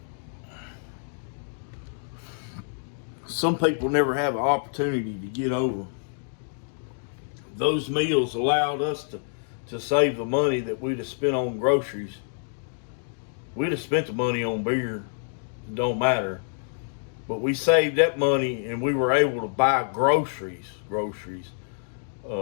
some people never have an opportunity to get over. Those meals allowed us to save the money that we'd have spent on groceries. We'd have spent the money on beer. It don't matter. But we saved that money and we were able to buy groceries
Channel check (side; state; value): right; silent; digital silence